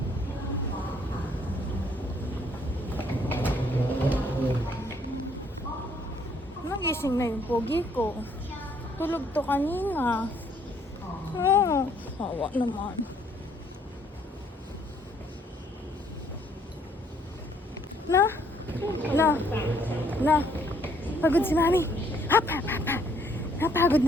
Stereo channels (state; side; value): normal; both; correlation 0.65